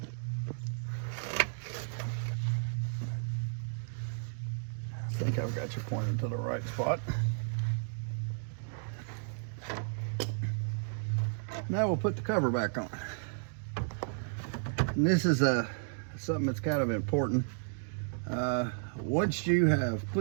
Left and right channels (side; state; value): left; silent; digital silence